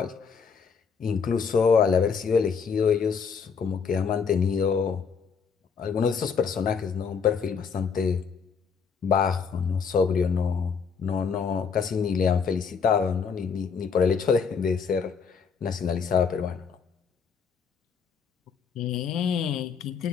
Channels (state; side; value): quieter; right; 6.0 dB